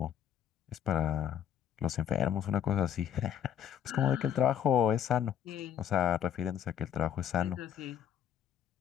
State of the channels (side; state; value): right; quieter; 9.3 dB